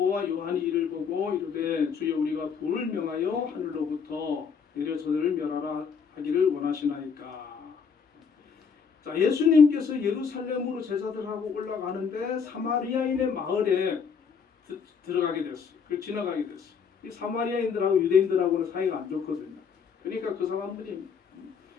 요한이 이를 보고 이르되 주여 우리가 불을 명하여 하늘로부터 내려 저들을 멸하라 하기를 원하시나이까. 자, 예수님께서 예루살렘으로 제자들하고 올라가는데 사마리아인의 마을에 들어가게 됐어요. 그걸 지나가게 됐어요. 이 사마리아인들하고 유대인들하고는 사이가 안 좋거든요. 그러니까 그 사람들이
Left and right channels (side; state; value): right; quieter; 6.2 dB